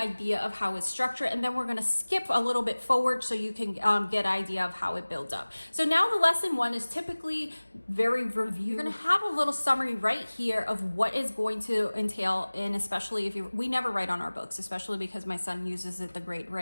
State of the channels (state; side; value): inverted; both; correlation -1.00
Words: of how it's structured, and then we're going to skip a little bit forward so you can get an idea of how it builds up. So now the lesson 1 is typically very review. You're going to have a little summary right here of what is going to entail, and especially if we never write on our books, especially because my son uses it the grade